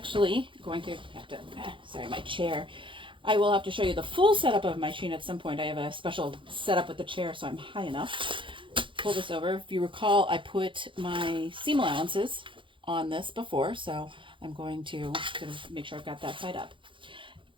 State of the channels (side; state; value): left; late; 0.24 ms